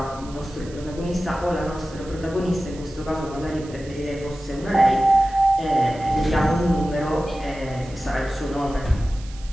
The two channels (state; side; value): noise; right; hiss, 21 dB below the sound